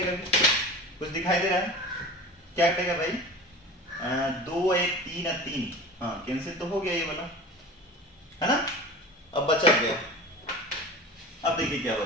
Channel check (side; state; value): both; normal; correlation 0.35